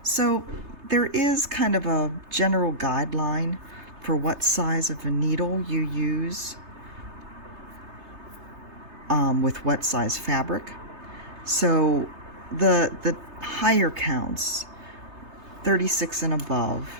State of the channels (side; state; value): left; late; 3.3 ms